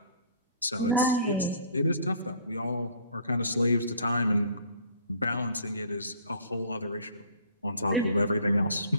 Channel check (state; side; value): inverted; both; correlation -0.53